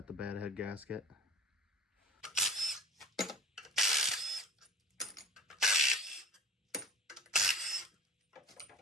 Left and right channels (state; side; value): normal; both; correlation 0.37